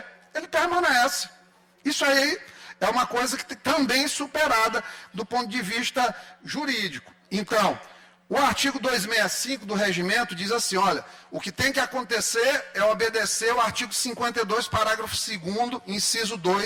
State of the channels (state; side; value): identical; both; correlation 1.00